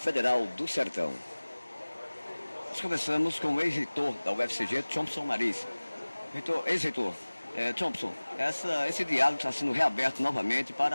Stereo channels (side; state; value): both; inverted; correlation -1.00